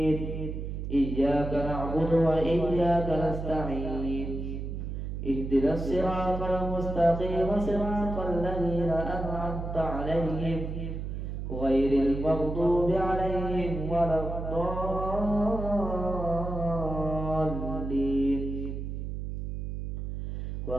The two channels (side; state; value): right; noise; hum, 5 dB below the sound